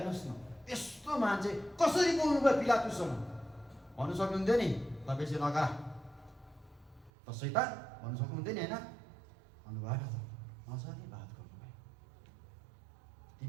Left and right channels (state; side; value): drops out; left; at 7.1 s